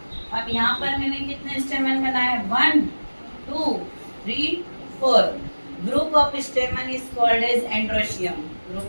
अब यहाँ पर मैंने कितने स्टेमन बनाए? 1 2 3 4। Group of stamen is called as androecium.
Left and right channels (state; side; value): inverted; both; correlation -1.00